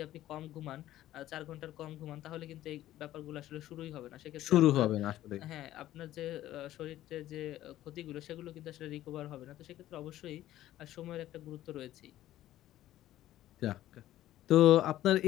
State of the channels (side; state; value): right; quieter; 13.9 dB